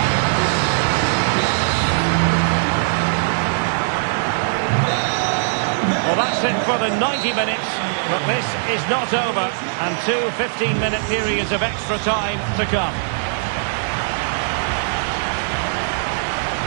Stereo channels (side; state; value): left; silent; digital silence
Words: Well, that's it for the 90 minutes, but this is not over, and two 15-minute periods of extra time to come.